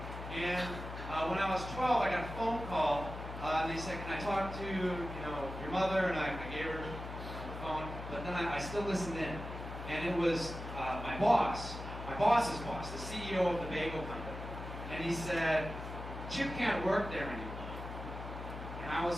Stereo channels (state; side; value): noise; left; hum, 9 dB below the sound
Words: And when I was 12, I got a phone call, and they said, can I talk to, your mother? And I gave her the phone, but then I still listened in. And it was my boss's boss, the CEO of the bagel company. And he said, Chip can't work there anymore. And I